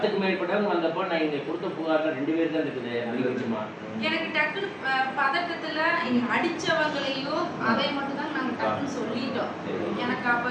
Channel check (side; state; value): both; identical; correlation 1.00